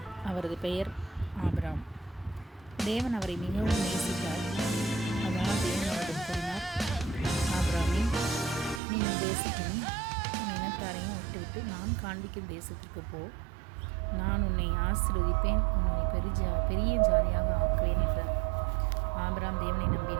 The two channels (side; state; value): left; drops out; at 8.8 s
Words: அவரது பெயர் ஆபிரகாம். தேவன் அவரை மிகவும் நேசித்தார். அதனால் தேவன் அவரிடம் கூறினார், ஆபிரகாமே, நீ உன் தேசத்தையும் உன் இனத்தாரையும் விட்டுவிட்டு நான் காண்பிக்கும் தேசத்திற்கு போ. நான் உன்னை ஆசீர்வதிப்பேன், உன்னை பெரிய ஜாதியாக ஆக்குவேன் என்றார். ஆபிரகாம் தேவனை